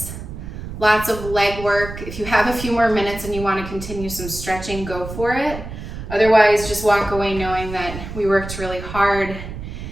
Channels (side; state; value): right; noise; rumble, 10 dB below the sound